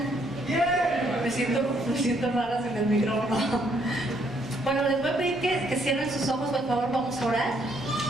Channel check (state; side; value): normal; both; correlation 0.69